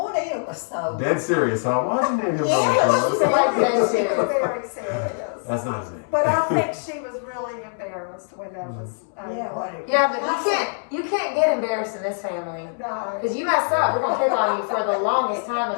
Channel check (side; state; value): right; silent; digital silence